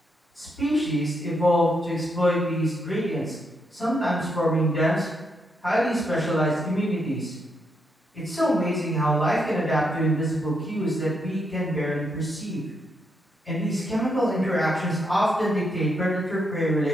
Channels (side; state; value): both; normal; correlation 0.79